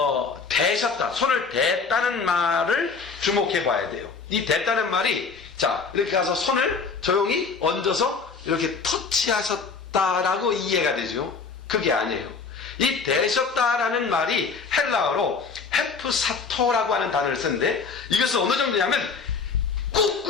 대셨다, 손을 댔다는 말을 주목해 봐야 돼요. 이 댔다는 말이 자 이렇게 가서 손을 조용히 얹어서 이렇게 터치하셨다라고 이해가 되죠. 그게 아니에요. 이 대셨다라는 말이 헬라어로 헤프사토라고 하는 단어를 쓰는데 이것은 어느 정도냐면 꾹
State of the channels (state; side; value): quieter; right; 5.0 dB